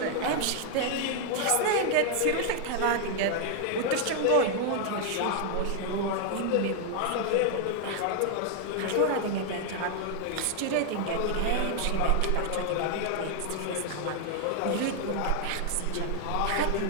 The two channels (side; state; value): both; different; correlation 0.00